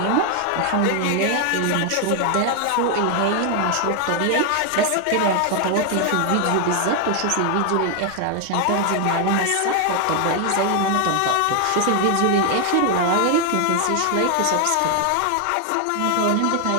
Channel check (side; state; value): both; different; correlation 0.00